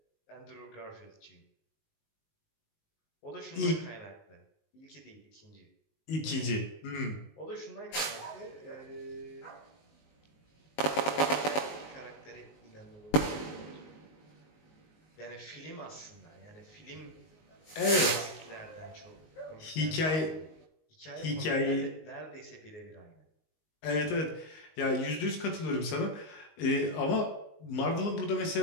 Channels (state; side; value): late; right; 19 ms